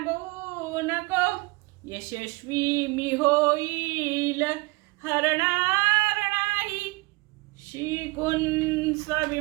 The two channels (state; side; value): quieter; left; 24.7 dB